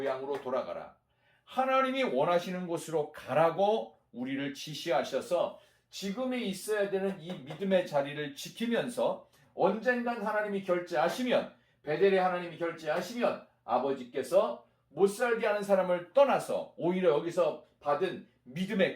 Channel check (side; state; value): both; identical; correlation 1.00